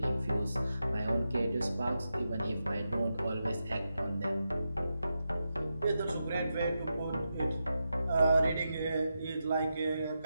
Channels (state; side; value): inverted; both; correlation -0.87